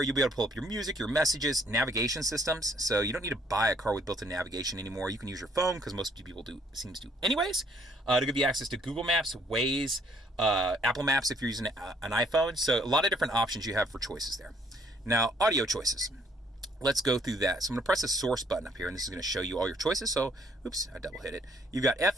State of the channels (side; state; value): both; normal; correlation 0.64